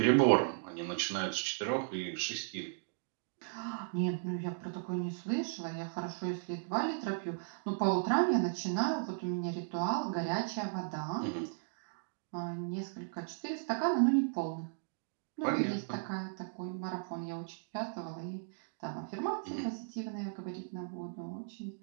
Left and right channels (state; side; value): silent; left; digital silence